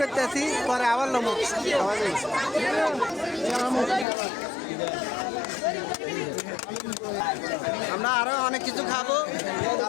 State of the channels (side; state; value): right; drops out; at 4.0 s